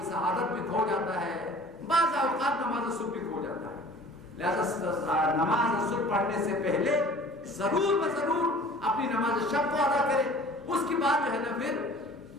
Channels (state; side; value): normal; both; correlation 0.47